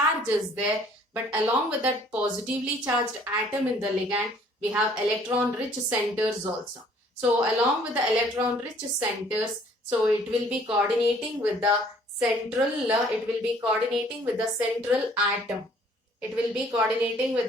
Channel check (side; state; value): both; normal; correlation 0.58